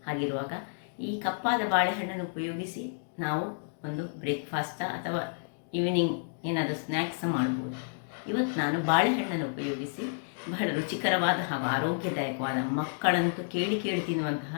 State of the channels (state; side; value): silent; right; digital silence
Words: ಹಾಗಿರುವಾಗ ಈ ಕಪ್ಪಾದ ಬಾಳೆಹಣ್ಣನ್ನು ಉಪಯೋಗಿಸಿ ನಾವು ಒಂದು ಬ್ರೇಕ್ಫಾಸ್ಟ ಅಥವಾ ಈವ್ನಿಂಗ್ ಏನಾದರೂ ಸ್ನ್ಯಾಕ್ಸ್ ಮಾಡ್ಬೋದು. ಇವತ್ತು ನಾನು ಬಾಳೆಹಣ್ಣನ್ನು ಉಪಯೋಗಿಸಿ ಬಹಳ ರುಚಿಕರವಾದ ಹಾಗೂ ಆರೋಗ್ಯದಾಯಕವಾದ, ಮಕ್ಕಳಂತೂ ಕೇಳಿ